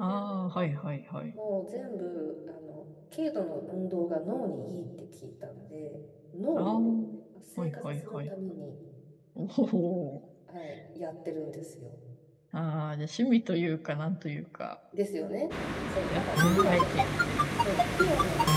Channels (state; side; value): identical; both; correlation 1.00